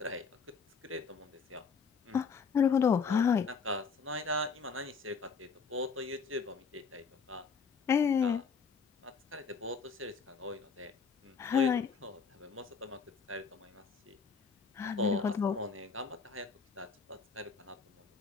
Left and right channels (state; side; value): quieter; right; 5.5 dB